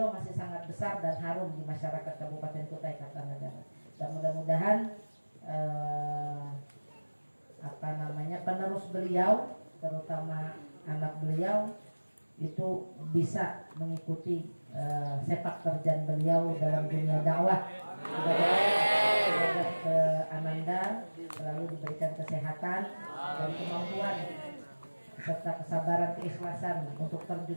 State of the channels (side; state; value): both; inverted; correlation -1.00